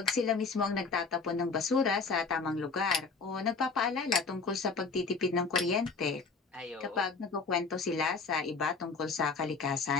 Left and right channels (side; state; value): right; quieter; 4.6 dB